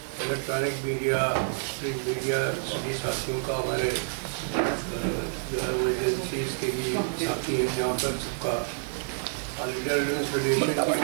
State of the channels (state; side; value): silent; left; 59 dB below the other